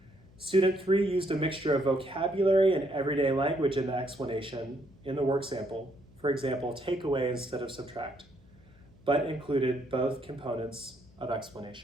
Student 3 used a mixture of vocabulary and everyday language in the explanation in the work sample, for example, take away instead of subtract, but included both components of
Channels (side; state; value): left; noise; hum, 26 dB below the sound